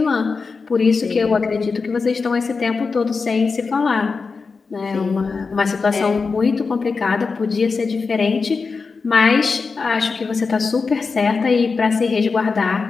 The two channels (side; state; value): right; quieter; 4.7 dB